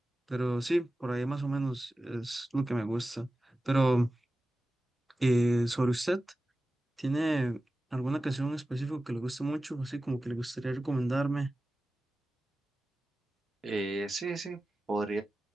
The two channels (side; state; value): both; normal; correlation 0.94